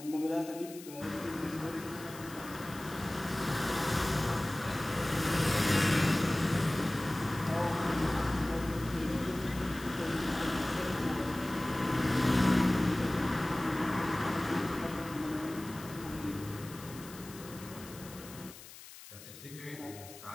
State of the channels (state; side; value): noise; left; hiss, 16 dB below the sound